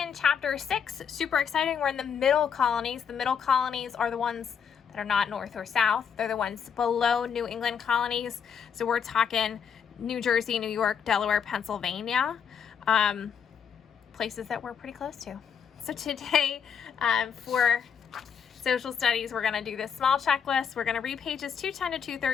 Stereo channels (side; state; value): right; quieter; 7.4 dB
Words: chapter 6, super exciting. We're in the middle colonies. The middle colonies are the ones that are not north or south. They're the ones below New England colonies. So we're talking New Jersey, New York, Delaware, Pennsylvania, places that we're pretty close to. So today, for social studies, we're going to do this small checklist. We're going to read pages 210 to